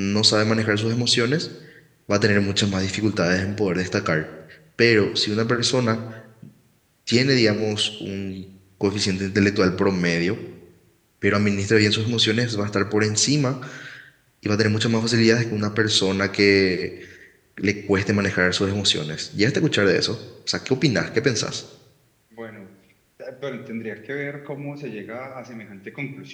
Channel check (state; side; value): identical; both; correlation 1.00